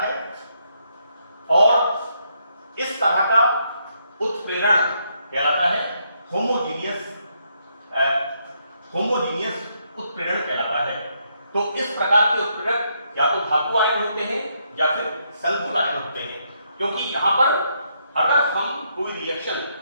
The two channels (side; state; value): both; inverted; correlation -0.76